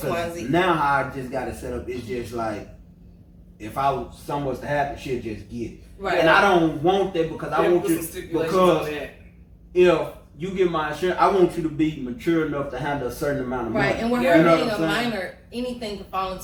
Y, and Z. Now how I just got it set up, it's just like if something was to happen, she'll just get it. Right. And I don't want that because I Yeah, want put you some stipulations on because that. if you get my insurance, I want you to be mature enough to handle a certain amount of money. Right, and with Yeah. her You know being what a I'm saying? minor, anything could fall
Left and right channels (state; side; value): identical; both; correlation 1.00